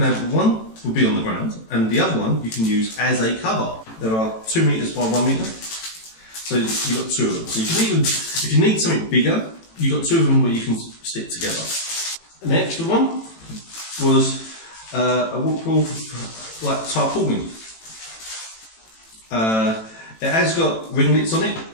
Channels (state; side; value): late; right; 18 ms